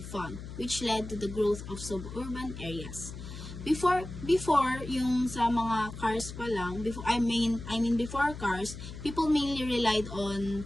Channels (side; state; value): left; noise; hum, 11 dB below the sound